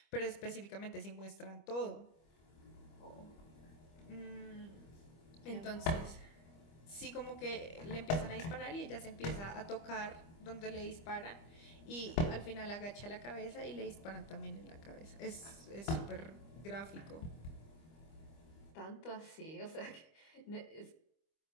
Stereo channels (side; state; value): right; late; 25 ms